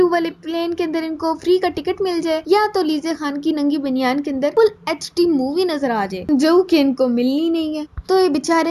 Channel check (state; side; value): identical; both; correlation 1.00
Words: वाले प्लेन के अंदर इनको फ्री का टिकट मिल जाए, या तो लीजे खान की नंगी बनियान के अंदर फुल HD मूवी नजर आ जाए, जो कि इनको मिलनी नहीं है। तो ये